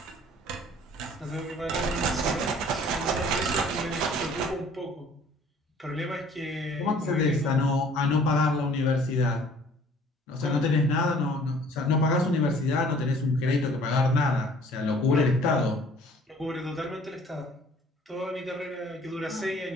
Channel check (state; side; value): normal; both; correlation 0.53